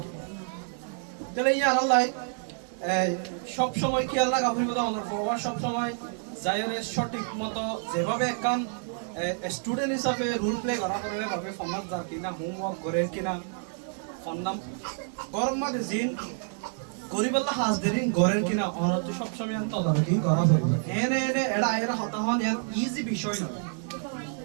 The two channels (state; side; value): silent; left; 59 dB below the other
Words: তাহলে ইয়ার আল্লাহ সব সময় কি আল্লাহ গাফির কথা অনর ফরওয়ার্ড সব সময় যায়রে সঠিক মতো যেভাবে একখান স্টুডেন্ট হিসাবে রোল প্লে করা করে ভাবে ফন্নাত যার কিনা হোমওয়ার্ক করে কিনা ফন্নাম গরম মাঝে জিন গরিবাল্লা হাজদেরিন গরের কিনা অনর সব সময় আন তদারকি করা হয় এনে এনে এড়া এরা হতা হন ইয়ার ইজি বিষয় নয়